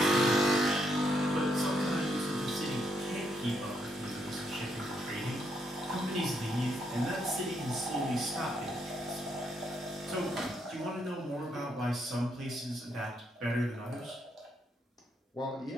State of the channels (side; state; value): both; normal; correlation 0.76